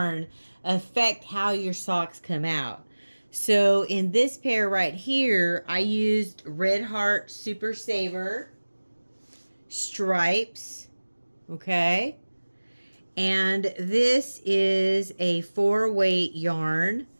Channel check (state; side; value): inverted; both; correlation -1.00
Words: affect how your socks come out. So in this pair right here, I used Red Heart Super Saver stripes, okay? And this is a 4-weight yarn,